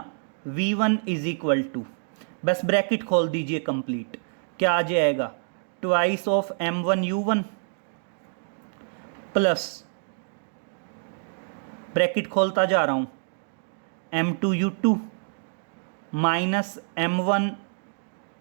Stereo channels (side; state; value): left; silent; digital silence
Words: v1 इज इक्वल टू, बस ब्रैकेट खोल दीजिए कंप्लीट, क्या आ जाएगा, twice of m1 u1 plus, bracket खोलता जा रहा हूं, m2 u2 minus m1